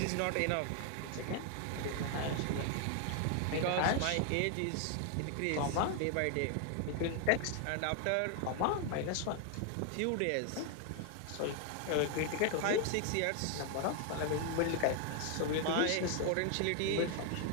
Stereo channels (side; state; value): both; different; correlation 0.00